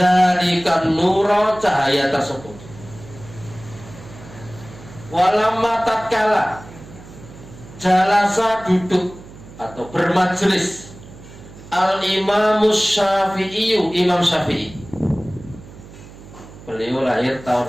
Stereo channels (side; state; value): right; noise; hum, 18 dB below the sound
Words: nura, cahaya tersebut. Walamma tatkala jalasa, duduk atau bermajlis, al imamus syafi'i, Imam Syafi'i, beliau lahir tahun